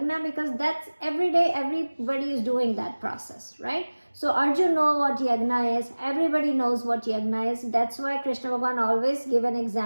because that's every day, everybody is doing that process, right? So Arjun knows what yagna is. Everybody knows what yagna is. That's why Krishna Bhagavan always give an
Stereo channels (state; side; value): inverted; both; correlation -1.00